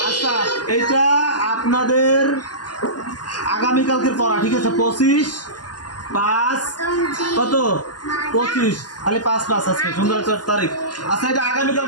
আচ্ছা এটা আপনাদের আগামীকালকের পড়া, ঠিক আছে? 25/5 কত? 25, খালি 5/5 আজকে সুন্দর একটা তারিখ। আচ্ছা এটা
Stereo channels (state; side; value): late; right; 0.70 ms